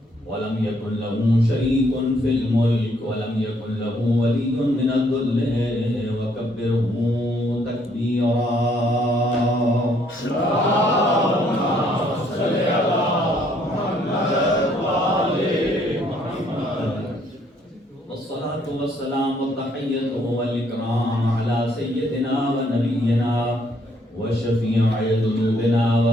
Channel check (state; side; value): normal; both; correlation 0.67